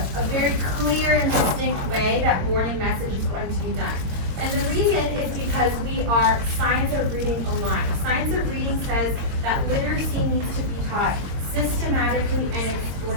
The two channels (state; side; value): late; left; 22 ms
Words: very clear and distinct way that morning message is going to be done. And the reason is because we are science of reading aligned. Science of reading says that literacy needs to be taught systematically and